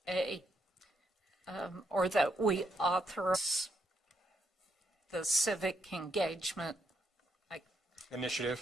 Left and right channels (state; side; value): normal; both; correlation 0.76